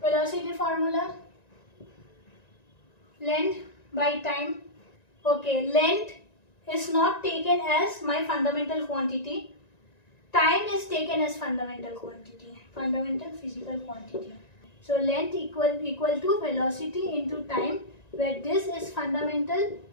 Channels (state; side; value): late; right; 1.9 ms